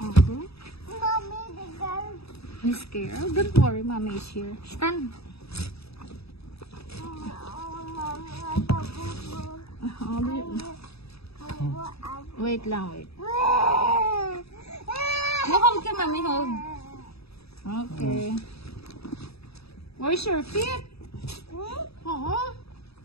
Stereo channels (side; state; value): right; late; 0.78 ms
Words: Okay. Mommy, the girl. Miss Carol, don't worry, Mommy is here. Stand. Wait lang, wait. Hold ka, Mommy, hold. Okay. Where's your feet?